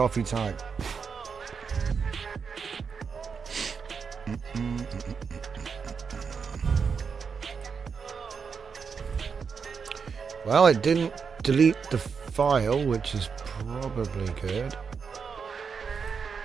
time. Well, it didn't delete the file, which is probably good.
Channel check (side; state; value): left; quieter; 5.9 dB